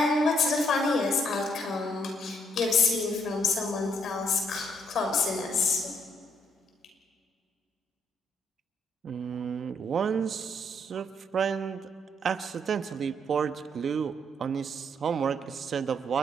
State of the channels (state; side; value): normal; both; correlation 0.71